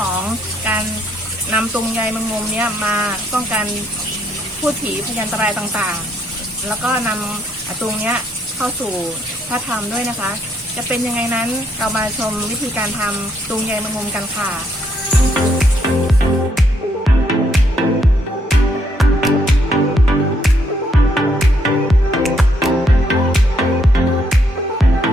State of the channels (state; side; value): normal; both; correlation 0.72